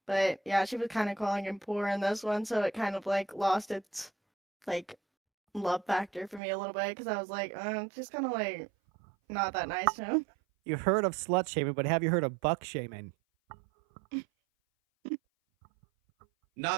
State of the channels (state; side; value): drops out; left; at 6.4 s